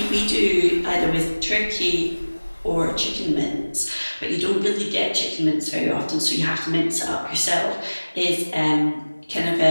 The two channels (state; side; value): inverted; both; correlation -1.00